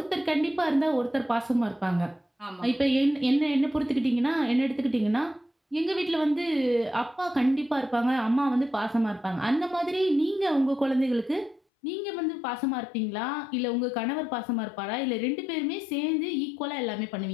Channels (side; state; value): right; drops out; at 11.6 s